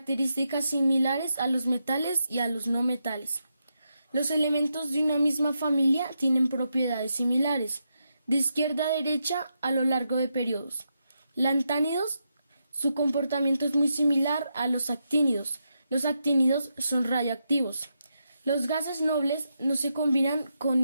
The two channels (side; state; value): both; inverted; correlation -0.84